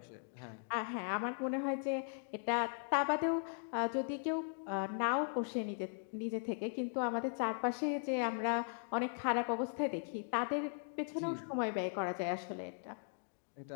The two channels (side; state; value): right; silent; digital silence